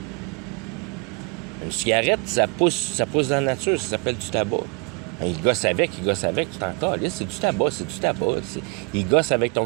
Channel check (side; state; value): left; quieter; 29.2 dB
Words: Une cigarette, ça pousse dans la nature, ça s'appelle du tabac. Il gosse avec, tu t'en cales. C'est du tabac. Il gosse avec ton